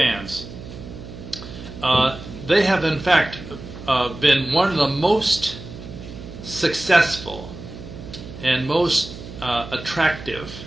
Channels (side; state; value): right; noise; hum, 13 dB below the sound